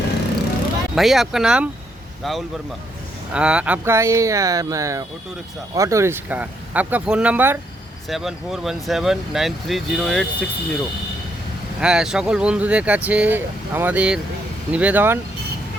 भैया आपका नाम? राहुल वर्मा। आपका ये ऑटो रिक्शा। आपका फ़ोन नंबर? 7417930860। হ্যাঁ, সকল বন্ধুদের কাছে আমাদের নিবেদন,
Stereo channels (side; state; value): both; normal; correlation 0.74